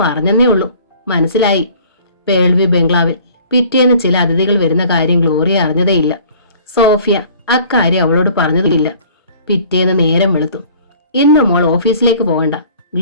പറഞ്ഞെന്നേ ഉള്ളൂ, മനസ്സിലായി. പേൾവി ബംഗ്ലാവിൽ പിറ്റേന്ന് ചില അതിഥികൾ വരുന്ന കാര്യം ഗ്ലോറിയ അറിഞ്ഞതേയില്ല. സോഫിയ അക്കാര്യം അവളോട് പറഞ്ഞതുമില്ല. പിറ്റേന്ന് നേരം വെളുത്തു. ഇന്ന് മോൾ ഓഫീസിലേക്ക് പോകണ്ട,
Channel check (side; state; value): both; inverted; correlation -0.51